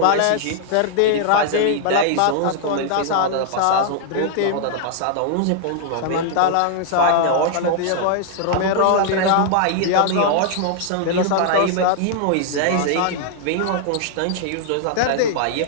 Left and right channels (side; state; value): both; different; correlation -0.01